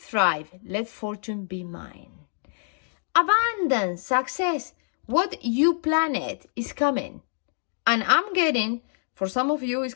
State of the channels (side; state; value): right; silent; digital silence